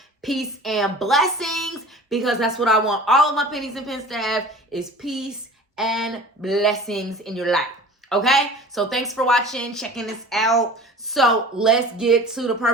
Peace and blessings, because that's what I want all of my pennies and pens to have, is peace and blessings in your life. Okay, so thanks for watching, checking this out. So let's get to the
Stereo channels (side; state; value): both; normal; correlation 0.41